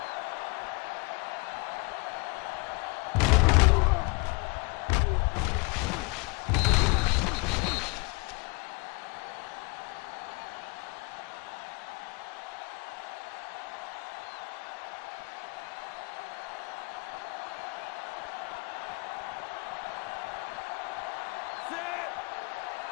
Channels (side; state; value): right; quieter; 29.1 dB